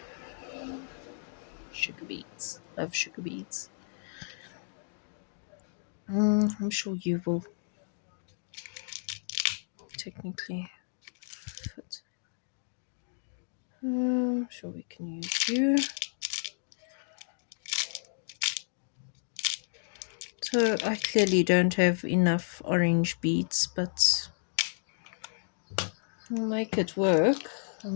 Sugar beads. Love sugar beads. I'm sure you will technically fit. I'm sure we can use you. So I clearly don't have enough orange beads, but I'll make it work. I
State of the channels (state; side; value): silent; right; digital silence